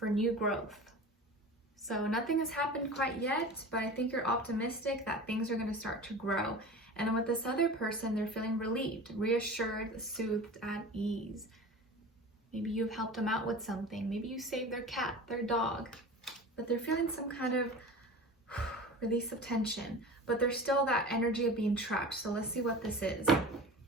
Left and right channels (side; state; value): both; normal; correlation 0.35